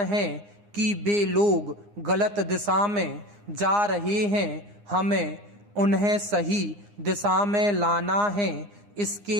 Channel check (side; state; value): left; late; 9.8 ms